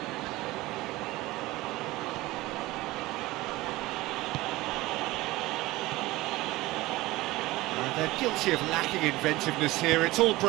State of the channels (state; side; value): quieter; left; 19.2 dB